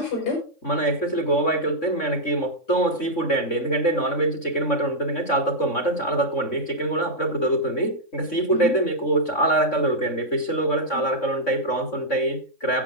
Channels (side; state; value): right; late; 3.6 ms